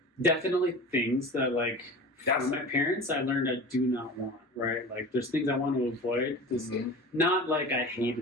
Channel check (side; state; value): both; normal; correlation 0.35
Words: definitely things that, like, That's from my parents I learned I do not want, right? Like, there's things I want to avoid. Mhm. Not like I